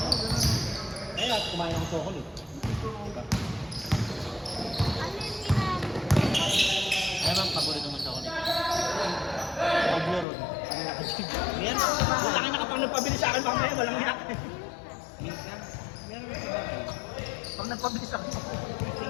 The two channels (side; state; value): right; drops out; at 10.2 s